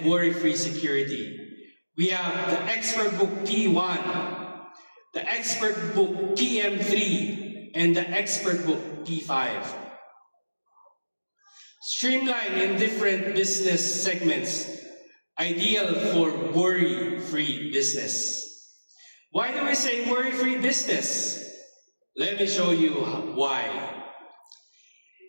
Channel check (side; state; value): both; inverted; correlation -1.00